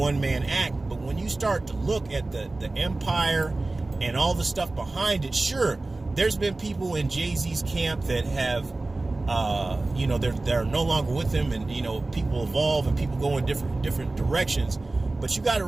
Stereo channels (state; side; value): quieter; left; 3.1 dB